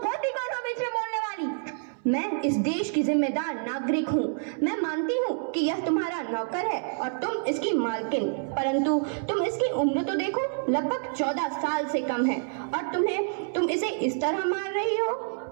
होती कौन हो बीच में बोलने वाली? मैं इस देश की जिम्मेदार नागरिक हूँ। मैं मानती हूँ कि यह तुम्हारा नौकर है और तुम इसकी मालकिन, परंतु तुम इसकी उम्र तो देखो, लगभग 14 साल से कम है और तुम इसे इस तरह मार रही हो।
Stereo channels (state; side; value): silent; left; 60 dB below the other